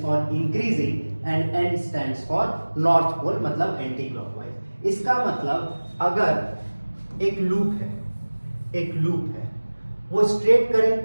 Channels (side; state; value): both; inverted; correlation -1.00